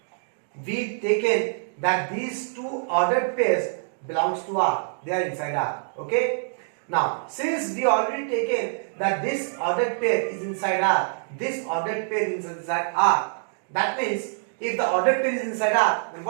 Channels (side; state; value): left; silent; digital silence